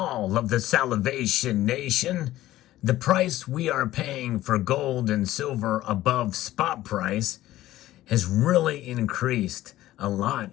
of the Salivation Nation. The price we are paying for gold and silver above spot price has really increased a lot,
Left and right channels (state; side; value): quieter; right; 15.1 dB